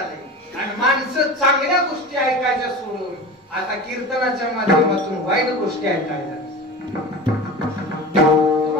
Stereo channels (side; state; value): both; normal; correlation 0.32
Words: आणि माणसं चांगल्या गोष्टी ऐकायच्या सोडून आता कीर्तनाच्या माध्यमातून वाईट गोष्टी ऐकायला.